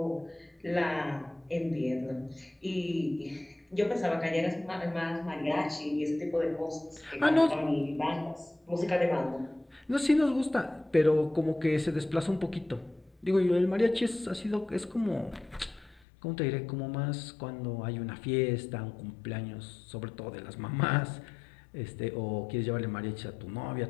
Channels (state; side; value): drops out; right; at 16.0 s